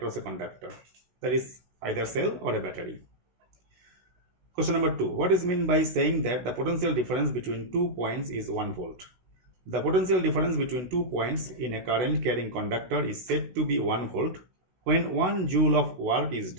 a conductor. That is either cell or a battery. Question number 2. What is meant by saying that the potential difference between 2 points is 1 volt? The potential difference between 2 points in a current carrying conductor is said to be 1 volt when 1 joule of work is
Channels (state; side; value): late; left; 16 ms